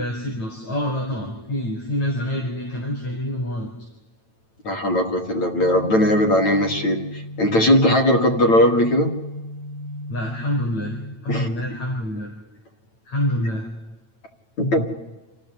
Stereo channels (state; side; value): late; right; 9.0 ms